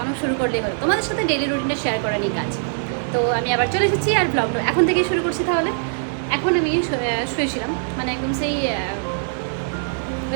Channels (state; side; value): silent; left; digital silence